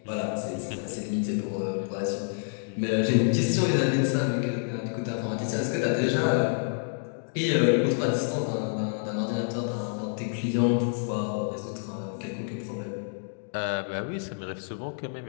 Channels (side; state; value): right; silent; digital silence